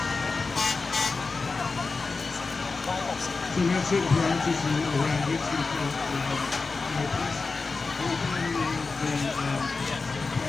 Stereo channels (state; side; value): quieter; right; 4.1 dB